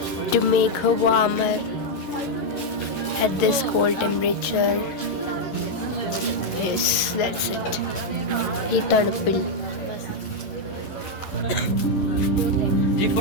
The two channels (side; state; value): right; late; 11 ms